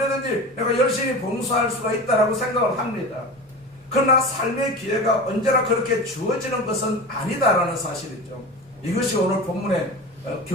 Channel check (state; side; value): normal; both; correlation 0.30